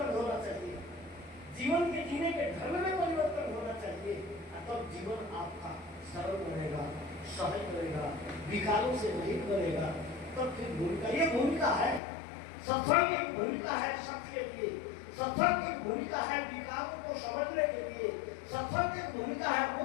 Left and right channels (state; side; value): drops out; right; at 12.0 s